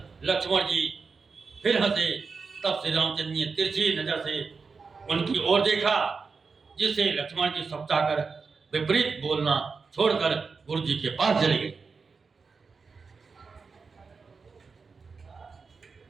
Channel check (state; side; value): quieter; left; 4.9 dB